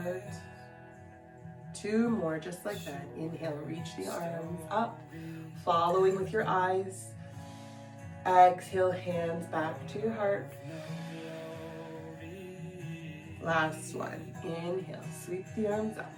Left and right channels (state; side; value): identical; both; correlation 1.00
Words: 2 more, just like that. Inhale, reach the arms up, following with your eyes. Exhale, hands back to your heart. Last one. Inhale, sweep the arms up.